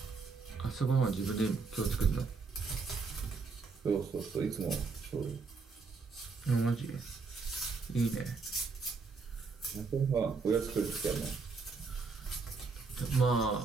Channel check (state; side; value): quieter; left; 4.6 dB